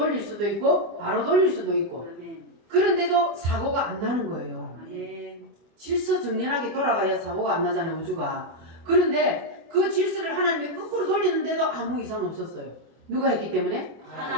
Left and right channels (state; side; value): late; left; 24 ms